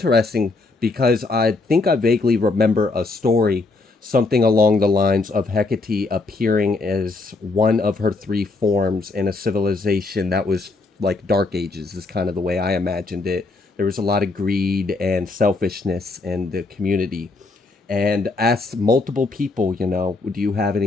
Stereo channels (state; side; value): quieter; right; 3.5 dB